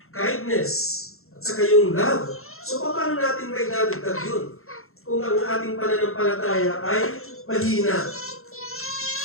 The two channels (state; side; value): late; right; 0.62 ms